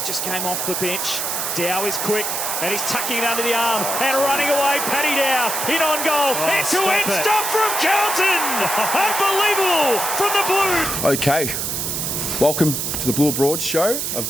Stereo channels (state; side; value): noise; right; hiss, 2 dB below the sound